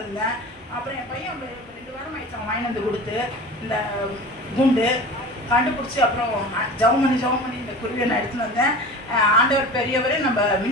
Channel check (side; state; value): both; normal; correlation 0.35